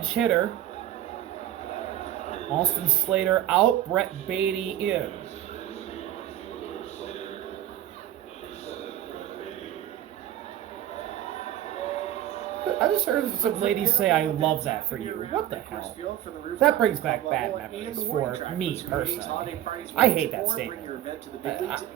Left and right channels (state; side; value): quieter; left; 12.2 dB